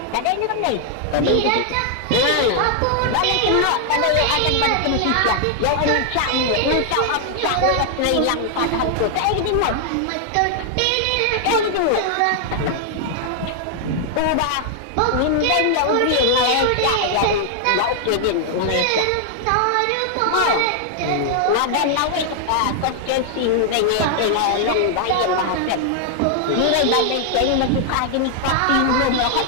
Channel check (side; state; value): both; different; correlation 0.00